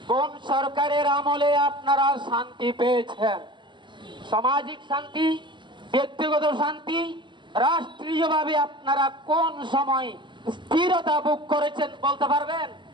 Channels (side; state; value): left; late; 0.23 ms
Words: কোন সরকারের আমলে আপনারা শান্তি পেয়েছেন? সামাজিক শান্তি, ব্যক্তিগত শান্তি, রাষ্ট্রীয়ভাবে আপনারা কোন সময় স্থিরতা ভোগ করেছেন বলতে পারবেন?